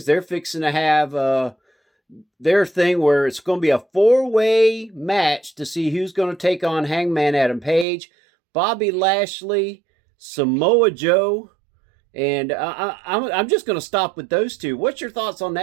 They're fixing to have their thing where it's going to be a 4-way match to see who's going to take on Hangman Adam Page, Bobby Lashley, Samoa Joe, and I'm just going to stop with those 2. What's your thoughts on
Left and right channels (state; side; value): drops out; left; at 7.9 s